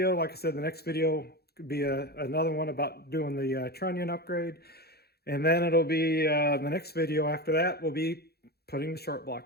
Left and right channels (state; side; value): late; right; 0.46 ms